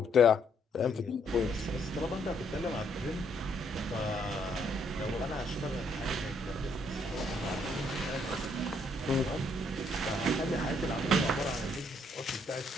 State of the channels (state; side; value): normal; both; correlation 0.70